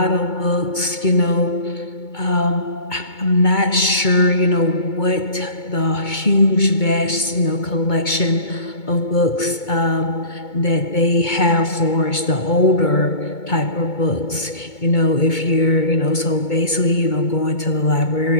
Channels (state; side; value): late; right; 2.2 ms